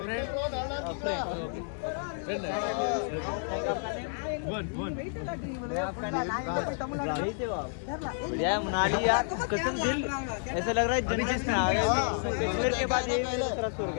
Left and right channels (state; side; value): silent; right; 58 dB below the other